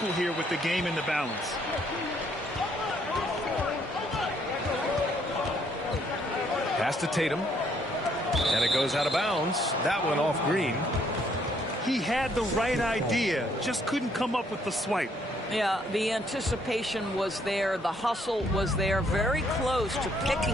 here with the game in the balance. Pass to Tatum. And it goes out of bounds. That one off Green. He had the right idea, just couldn't come up with the swipe. Yeah, the anticipation was there. The hustle was there. Very close to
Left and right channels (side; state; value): both; normal; correlation 0.68